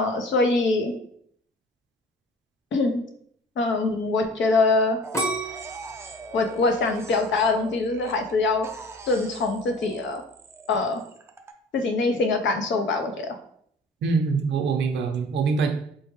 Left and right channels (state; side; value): normal; both; correlation 0.44